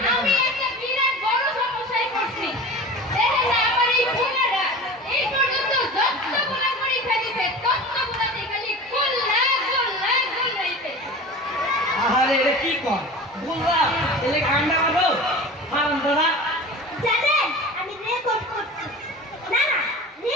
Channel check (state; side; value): normal; both; correlation 0.35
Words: আমি আছে। একটা বিরাট বড় সমস্যায় পড়ছি। দেখেন না, আমার এই বোনেরা এই পর্যন্ত যতগুলো পরীক্ষা দিছে ততগুলোতে খালি গোল্লা গোল্লা গোল্লাইতে। আরে এটা কি কর বললাম, এলে কান্না করো হারাম দাদা। জানেন আমি রেকর্ড করছি। না না,